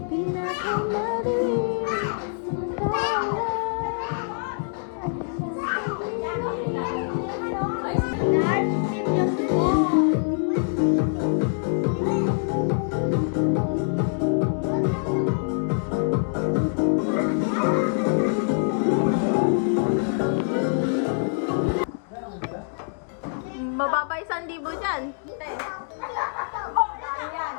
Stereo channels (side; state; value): right; silent; digital silence